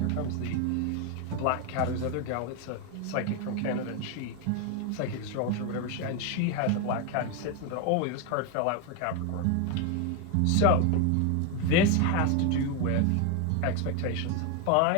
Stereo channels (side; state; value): both; different; correlation 0.01